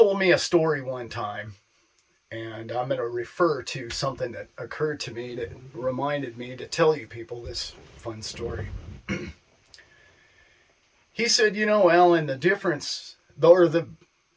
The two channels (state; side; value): identical; both; correlation 1.00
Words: me a story one time, and I'm going to refer to something that occurred to me that reminded me to tell you people this fun story. He said, Allan, the difference